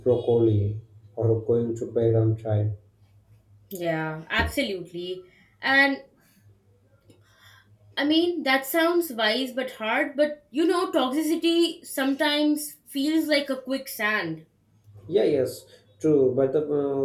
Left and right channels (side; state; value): both; identical; correlation 1.00